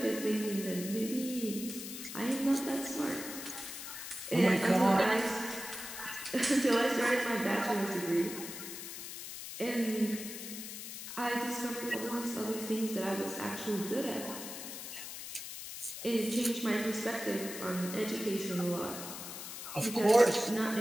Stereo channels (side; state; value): left; noise; hiss, 9 dB below the sound